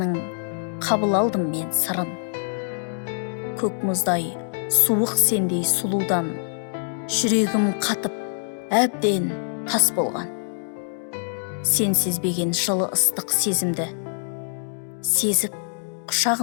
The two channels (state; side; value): silent; right; digital silence